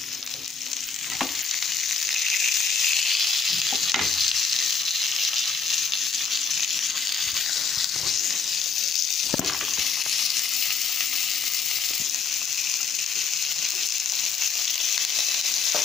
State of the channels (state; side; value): quieter; right; 5.5 dB